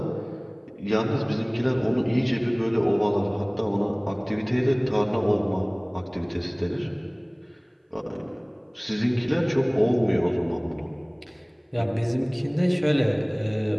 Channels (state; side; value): identical; both; correlation 1.00